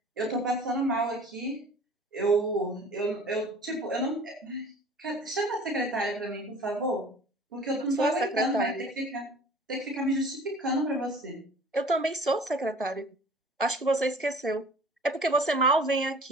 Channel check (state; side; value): normal; both; correlation 0.47